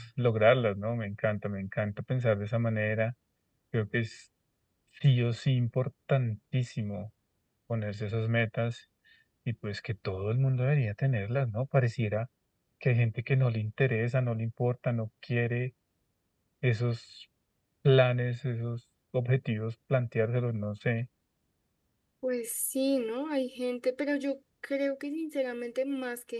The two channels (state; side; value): identical; both; correlation 1.00